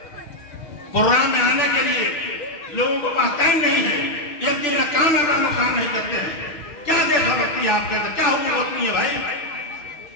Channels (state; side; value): late; right; 6.4 ms